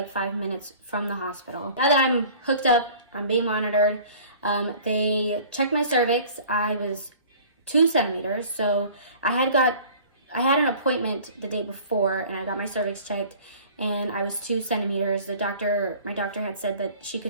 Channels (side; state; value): both; inverted; correlation -0.47